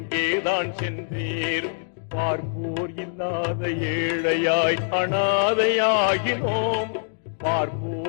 சென்றீர்? பார்ப்போர் இல்லாத ஏழையாய் அனாதையாகினோம்.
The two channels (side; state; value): right; silent; digital silence